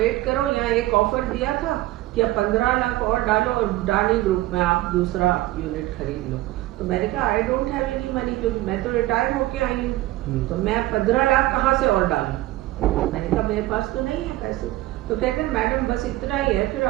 करो, यहाँ एक ऑफर दिया था कि अब 15 लाख और डालो और डानी ग्रुप में आप दूसरा यूनिट खरीद लो। तो मैंने कहा I don't have any money, क्योंकि मैं तो रिटायर होके आई हूँ, तो मैं 15 लाख कहाँ से और डालूं? मैंने कहा मेरे पास तो नहीं है पैसे। तो कहते हैं मैडम बस इतना ही है, फिर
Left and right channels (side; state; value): left; quieter; 17.2 dB